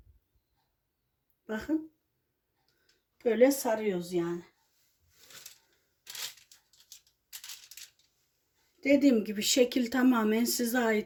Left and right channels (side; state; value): both; identical; correlation 1.00